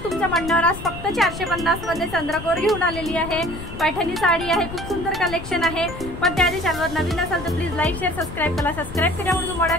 तुमच्या म्हणण्यावर आज फक्त 450 मध्ये चंद्रकोर घेऊन आलेली आहे। पैठणी साडी आहे, खूप सुंदर कलेक्शन आहे। पण त्याआधी चॅनलवर नवीन असाल तर प्लीज लाईक शेअर सबस्क्राईब करा। सबस्क्राईब केल्यामुळे तुम्हाला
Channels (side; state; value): left; noise; rumble, 11 dB below the sound